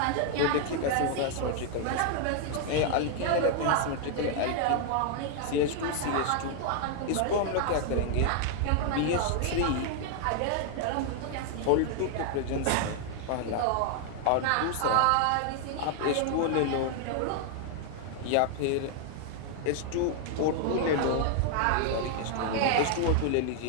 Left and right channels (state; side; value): different; both; correlation 0.00